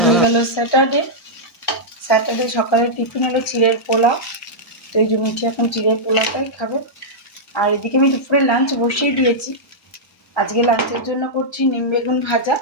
হয়ে গেল স্যাটারডে। স্যাটারডে সকালে টিফিন হলো চিড়ের পোলাও, তো এই যে মিঠি এখন চিড়ের পোলাওটাই খাবে। আর এদিকে আমি দুপুরে লাঞ্চ বসিয়ে দিয়েছি। আজকে লাঞ্চের জন্য করছি নিম বেগুন ভাজা।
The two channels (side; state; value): both; normal; correlation -0.08